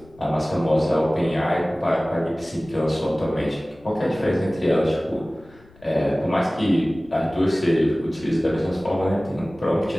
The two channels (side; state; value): left; noise; rumble, 26 dB below the sound